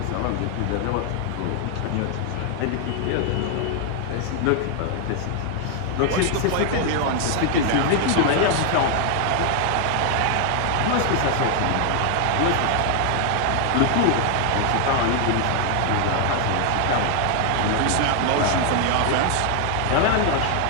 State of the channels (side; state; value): both; different; correlation 0.00